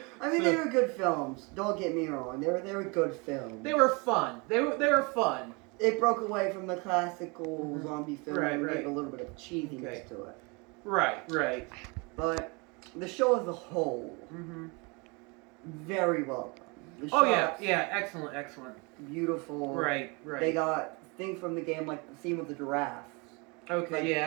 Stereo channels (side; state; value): left; quieter; 29.6 dB